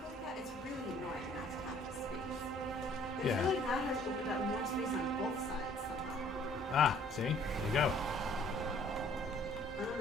like that? It's really annoying not to have the space. I Yeah. feel like that has opened up more space on both sides somehow. Ah, see? There you go. I don't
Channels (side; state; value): both; normal; correlation 0.58